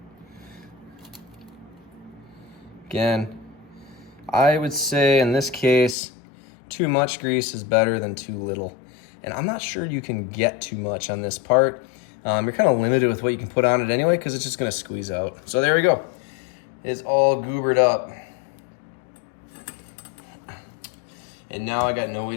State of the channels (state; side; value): drops out; right; at 6.0 s